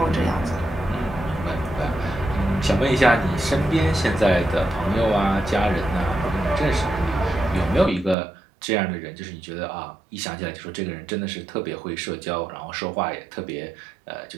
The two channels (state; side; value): drops out; left; at 8.2 s